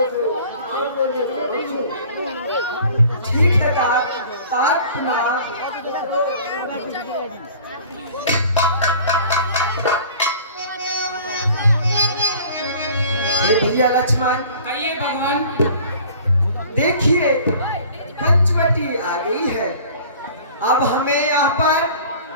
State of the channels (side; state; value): both; inverted; correlation -0.47